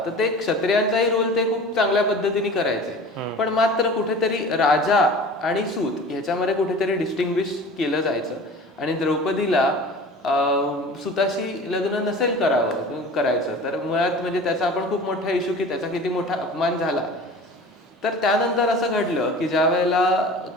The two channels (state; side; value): normal; both; correlation 0.40